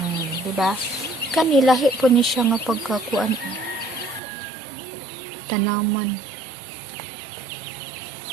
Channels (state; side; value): drops out; left; at 4.2 s